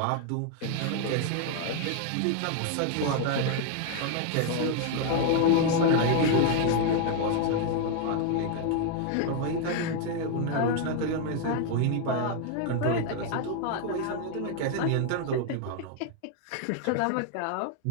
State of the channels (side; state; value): both; different; correlation 0.00